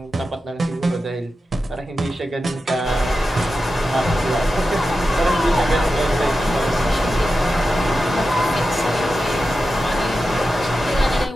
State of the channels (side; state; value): both; normal; correlation 0.91